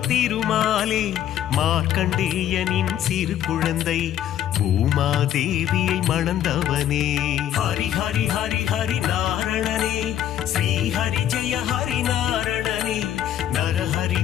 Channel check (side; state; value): right; quieter; 11.1 dB